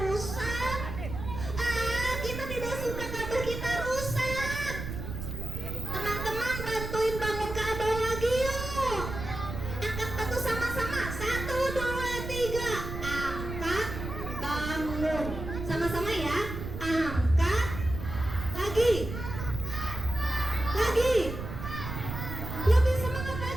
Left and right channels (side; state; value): right; noise; rumble, 7 dB below the sound